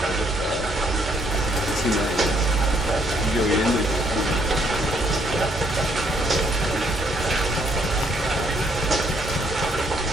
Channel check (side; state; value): both; normal; correlation 0.69